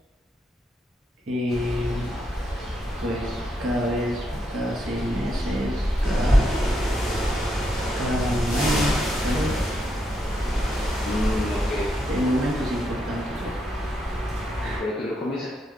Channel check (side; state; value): both; normal; correlation 0.80